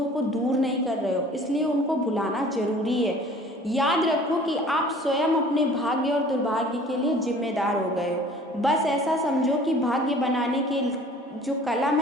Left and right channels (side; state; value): both; normal; correlation 0.49